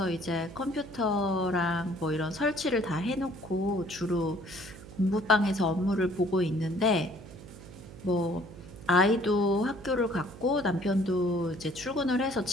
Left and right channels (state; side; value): noise; right; hum, 16 dB below the sound